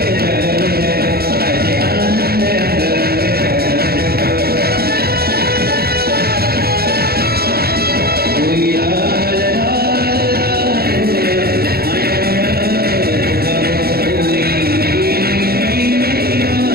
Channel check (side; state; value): left; late; 0.45 ms